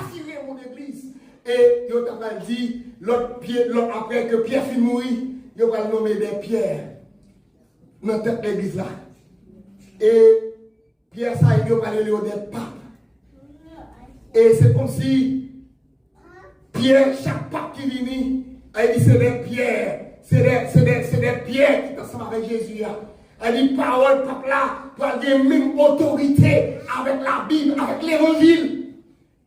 mon église. Et il t'a dit, l'autre après que Pierre finit mourir, il va nommer des pierres dans cette église là. Et Pierre, ça, il va parler des papes. Et c'est comme si Pierre, chaque pape qui vient, Elle dit c'est des pierres. C'est des pierres qui sont ensemble avec Jésus. Elle dit parole, peuple là, pour avoir la même autorité avec la Bible, avec l'évangile.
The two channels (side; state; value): both; identical; correlation 1.00